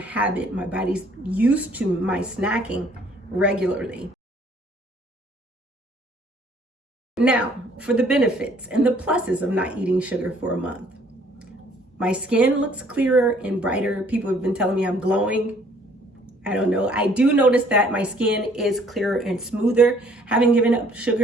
My body's used to my snacking regularly. Now, for the benefits and the pluses of not eating sugar for a month. My skin looks clearer and brighter. People have been telling me I'm glowing. I don't know. I do notice that my skin is clearer and smoother, having given up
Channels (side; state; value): both; normal; correlation 0.60